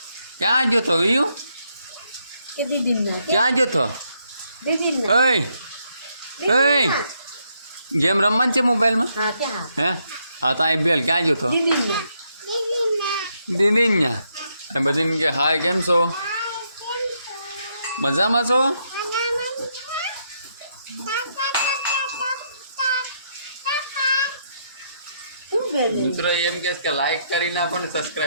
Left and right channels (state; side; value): inverted; both; correlation -0.76